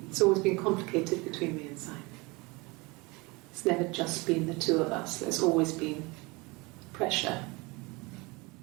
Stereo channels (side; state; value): left; quieter; 25.6 dB